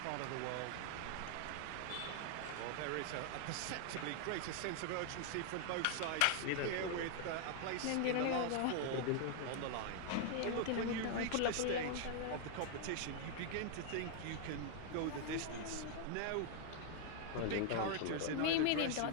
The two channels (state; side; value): different; both; correlation 0.00